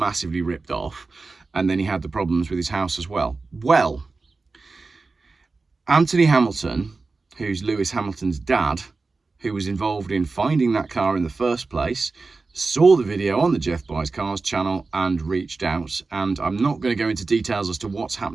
ripped off. And then he had the problems with his house as well. Well, Anthony Hamilton, who's Lewis Hamilton's dad, who was involved in finding that car in the first place, saw the video on the Jeff Buys Cars channel and reached out. And I'm not going to go into details as to what's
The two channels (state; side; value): quieter; left; 3.9 dB